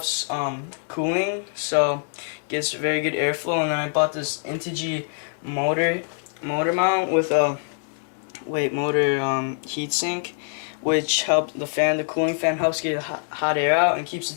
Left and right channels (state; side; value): silent; right; digital silence